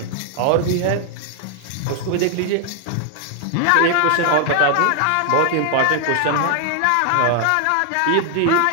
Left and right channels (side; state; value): both; different; correlation 0.00